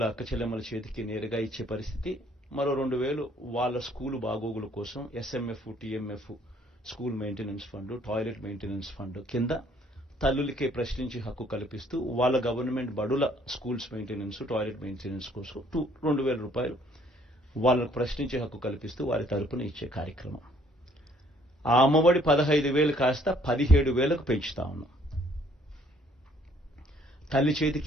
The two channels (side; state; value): both; normal; correlation 0.62